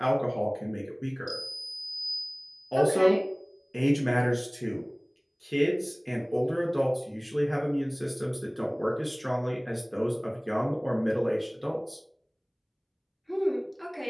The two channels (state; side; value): identical; both; correlation 1.00